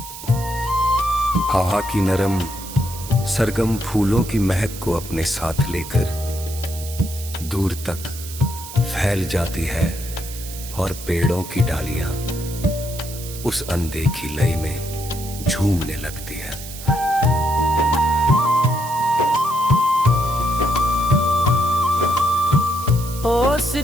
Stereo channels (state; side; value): noise; right; hiss, 12 dB below the sound